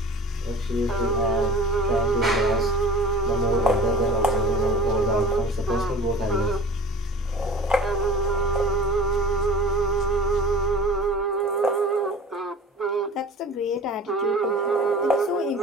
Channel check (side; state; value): both; normal; correlation 0.42